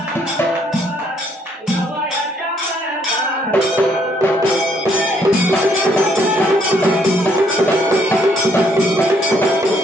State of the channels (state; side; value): normal; both; correlation 0.68